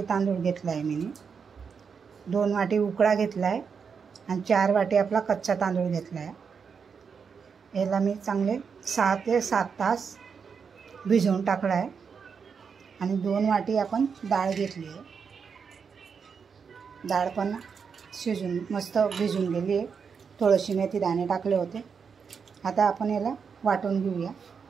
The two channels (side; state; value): left; quieter; 6.1 dB